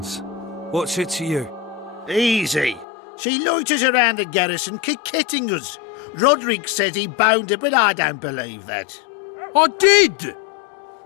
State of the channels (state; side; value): drops out; right; at 2.9 s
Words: What's it to you? Easy. She loiters around the garrison kick-kitting us. Roderick says he bound her, but I don't believe that. I did!